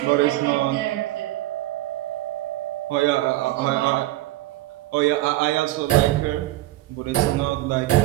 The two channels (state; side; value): quieter; left; 16.7 dB